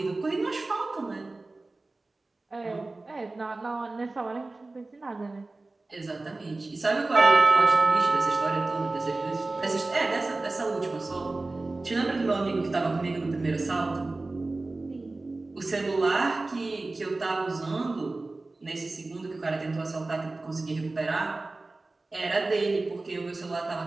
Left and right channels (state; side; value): quieter; left; 3.2 dB